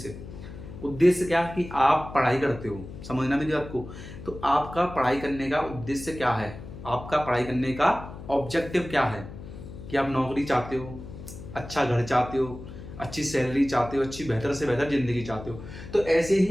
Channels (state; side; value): noise; left; hum, 13 dB below the sound